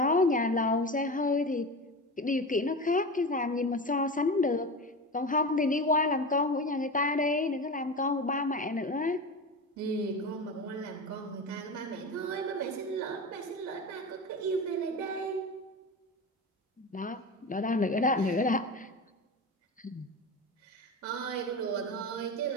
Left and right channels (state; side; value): normal; both; correlation 0.26